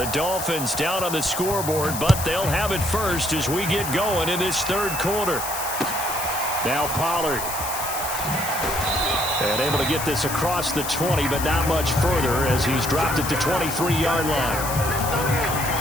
Dolphins down on the scoreboard, but they'll have it first as we get going in this third quarter. Now Pollard. And able to get this across the 20, but not much further as he's dropped at the 23-yard line.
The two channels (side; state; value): left; noise; hiss, 6 dB below the sound